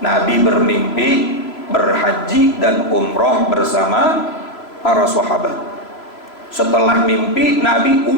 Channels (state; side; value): late; right; 3.0 ms